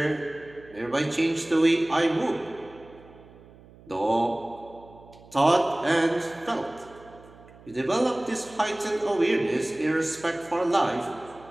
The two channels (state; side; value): noise; right; hum, 23 dB below the sound